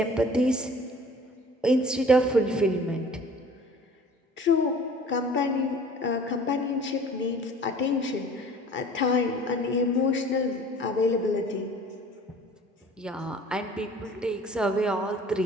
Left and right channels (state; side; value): normal; both; correlation 0.48